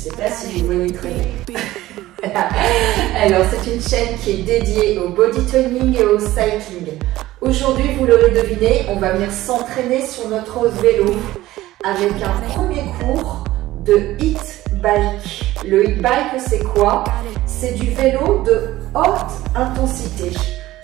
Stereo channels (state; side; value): quieter; left; 16.2 dB